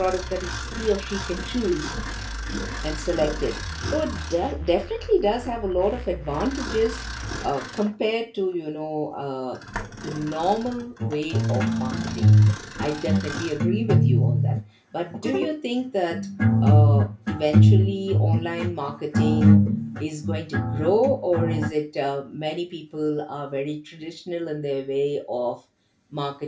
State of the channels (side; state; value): both; identical; correlation 1.00